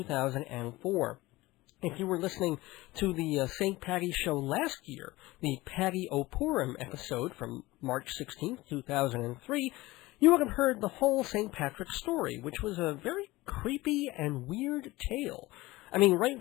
If you were listening to the St. Paddy show last year, the Paddy O'Purim episode from March 16th, 2003, you would have heard the whole St. Patrick story, which was a very creepy and weird tale. I mean, right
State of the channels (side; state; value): right; quieter; 19.6 dB